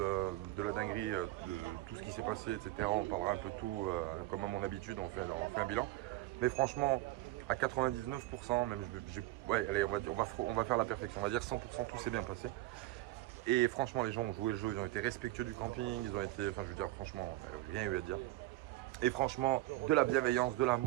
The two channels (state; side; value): quieter; left; 17.3 dB